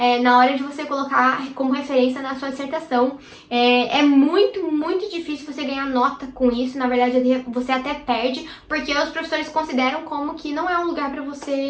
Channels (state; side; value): identical; both; correlation 1.00